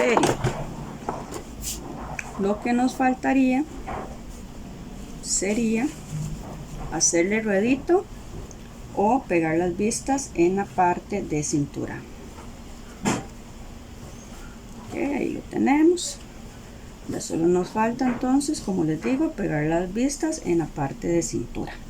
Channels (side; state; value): both; identical; correlation 1.00